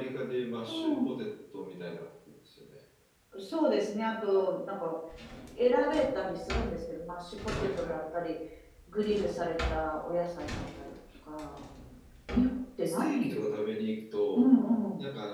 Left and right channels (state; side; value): identical; both; correlation 1.00